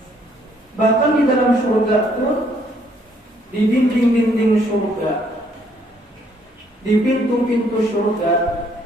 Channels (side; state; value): both; normal; correlation 0.67